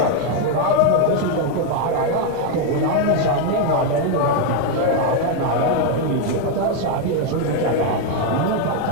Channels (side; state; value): both; different; correlation 0.01